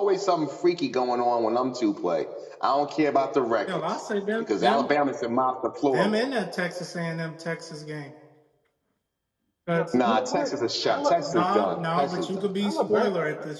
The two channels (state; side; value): identical; both; correlation 1.00